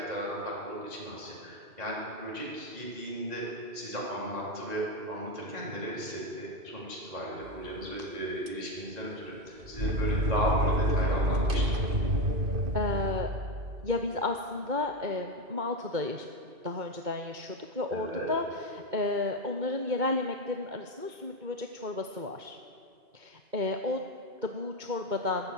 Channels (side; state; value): left; late; 2.2 ms